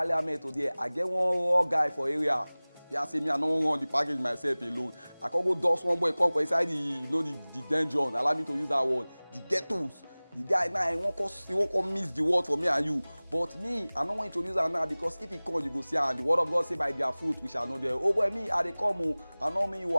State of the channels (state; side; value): inverted; both; correlation -1.00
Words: today, I get one raw guy for area. Yeah, say me I no run the package myself alone. I can go dust one boy come for inside the dungeon. Allow me to use that word. The ghettos. The guy now he won't come miss the word for me and you. But me, I don't want to introduce that now because if he come, you go see and the word of God say by their fruit we shall know them. Oh boy, me I dey come o. I know me you